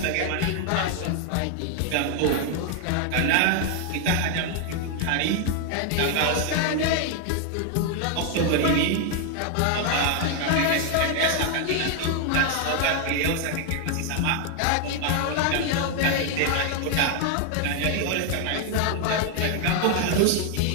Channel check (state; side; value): different; both; correlation 0.00